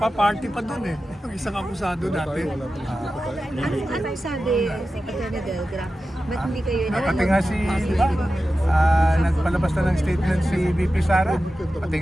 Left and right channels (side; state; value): both; normal; correlation 0.93